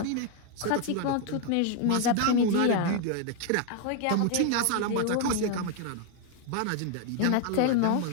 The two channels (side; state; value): both; different; correlation 0.00